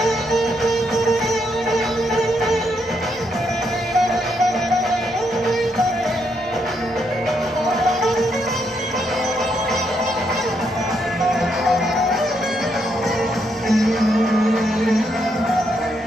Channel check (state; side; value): normal; both; correlation 0.77